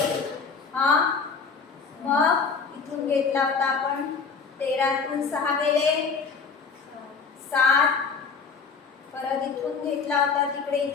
मग इथून घेतला होता आपण 13तून 6 गेले 7. परत इथून घेतला होता तिकडे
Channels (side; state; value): right; quieter; 5.3 dB